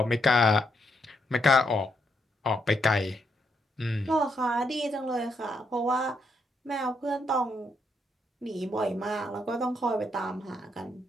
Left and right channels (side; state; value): both; normal; correlation 0.77